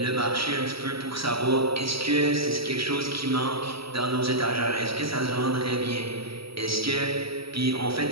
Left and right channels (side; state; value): left; late; 0.75 ms